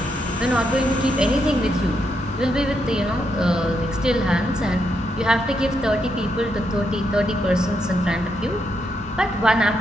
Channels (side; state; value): both; normal; correlation 0.80